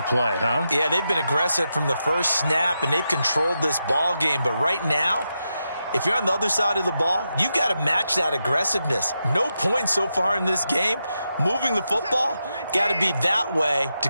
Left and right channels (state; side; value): inverted; both; correlation -0.87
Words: play, huh? Yeah, they've been aggressive from the first snap, and they've controlled this ball game. But right now, if you're on the other side of the ball, you've got to match that aggressiveness. No points so far in this game. Moving the football, got to be that way to